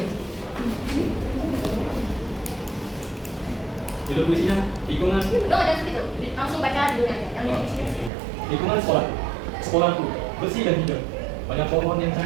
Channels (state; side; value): drops out; left; at 8.1 s